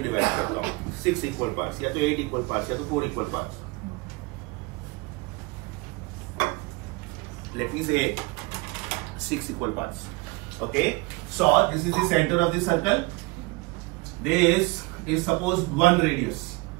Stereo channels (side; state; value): left; quieter; 25.1 dB